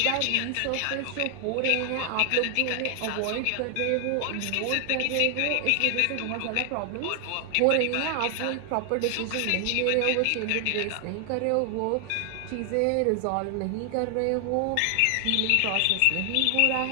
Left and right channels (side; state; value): both; different; correlation 0.00